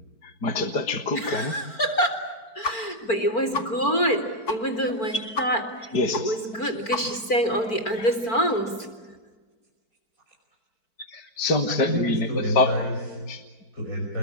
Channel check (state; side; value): late; right; 4.4 ms